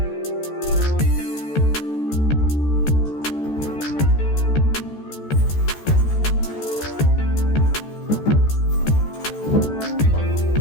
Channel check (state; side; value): late; right; 14 ms